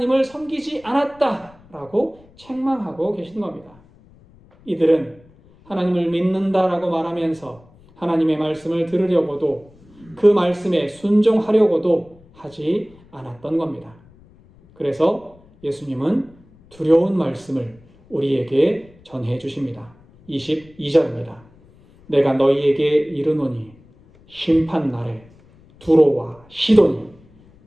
섬기지 않았다 라고 책망하고 계신 겁니다. 이들은 하나님을 믿는다라고 말하면서 하나님의 말씀을 들으려고도 그 말씀에 순종하려고도 하지 않았던 겁니다. 그래서 예수님은 두려운 말씀을 우리에게 전해 주십니다. 22절입니다. 내가 너희에게 이르노니 심판날에 두로와 시돈이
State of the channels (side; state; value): left; noise; rumble, 27 dB below the sound